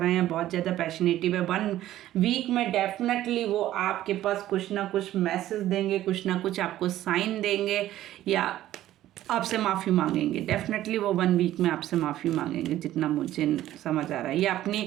हैं, बहुत ज़्यादा पैशनेटिव है। 1 वीक में डेफिनेटली वो आपके पास कुछ ना कुछ मैसेज देंगे, कुछ ना कुछ आपको साइन देंगे या आपसे माफ़ी मांगेंगे, डेफिनेटली वो 1 वीक में आपसे माफ़ी मांगेंगे, जितना मुझे समझ आ रहा है। ये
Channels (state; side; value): quieter; left; 13.7 dB